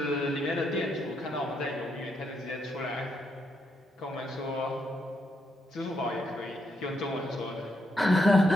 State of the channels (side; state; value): both; normal; correlation 0.79